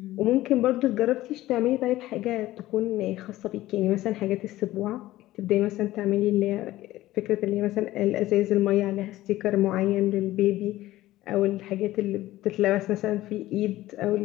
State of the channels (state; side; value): quieter; right; 16.1 dB